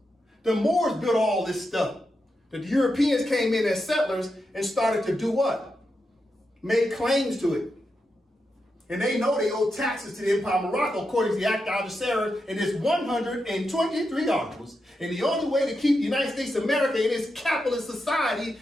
The Moors built all this stuff. The Europeans came in as settlers and started to do what? Make claims to it. And they know they owe taxes to the Empire of Morocco according to the Act of Algeciras and its 123 articles. And the only way to keep the United States of America in its capitalist society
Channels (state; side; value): normal; both; correlation 0.87